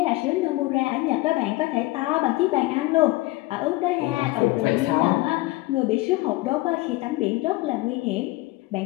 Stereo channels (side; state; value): right; quieter; 20.0 dB